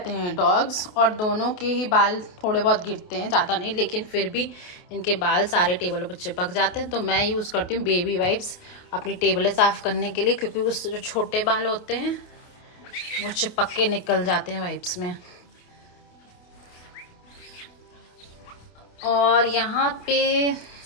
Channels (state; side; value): late; right; 28 ms